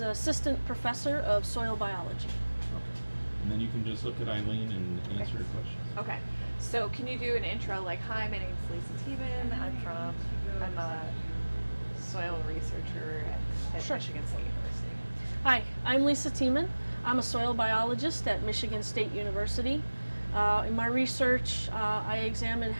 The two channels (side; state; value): both; inverted; correlation -1.00